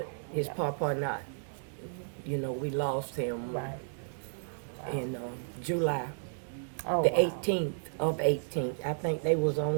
his papa not. We lost him in July. The 18th of 18th. I think they was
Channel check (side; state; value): left; silent; 56 dB below the other